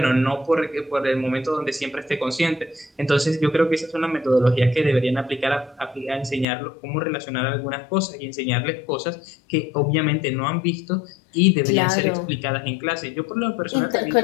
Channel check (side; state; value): right; drops out; at 6.5 s